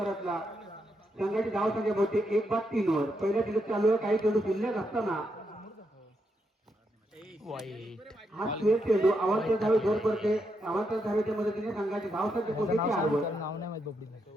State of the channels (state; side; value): normal; both; correlation 0.81